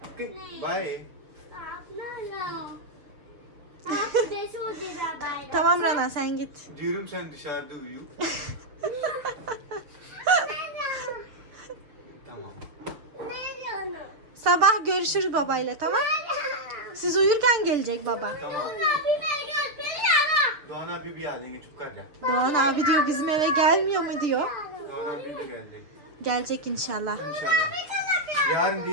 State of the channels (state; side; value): late; left; 6.7 ms